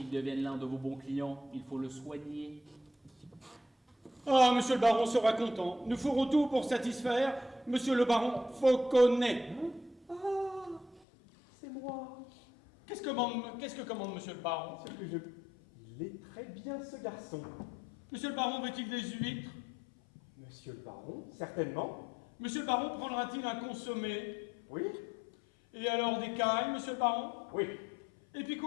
devienne l'un de vos bons clients, il faut le soigner. Ah, monsieur le baron sera content. Nous ferons tout pour satisfaire monsieur le baron Fauconnet. Ah, c'est moi. Qu'est-ce que commande monsieur le baron? C'est que il est très bien, ce garçon. Monsieur le baron veut-il des huîtres? Monsieur le baron, certainement. Monsieur le baron prendra-t-il un consommé? Oui, Et alors des cailles, monsieur le baron? oui, Et puis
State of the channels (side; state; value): right; drops out; at 11.0 s